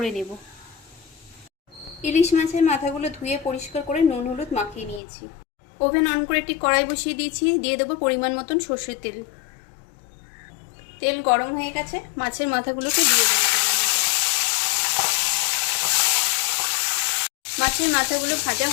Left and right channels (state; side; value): drops out; right; at 5.0 s